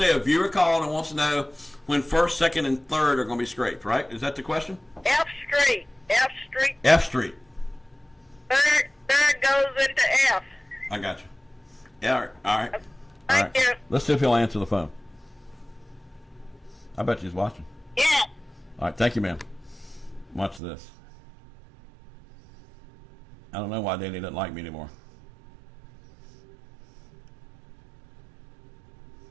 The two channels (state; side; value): drops out; left; at 20.6 s